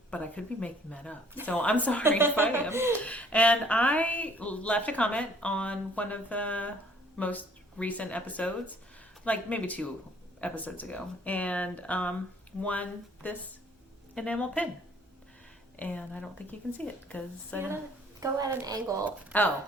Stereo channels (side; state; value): both; normal; correlation 0.58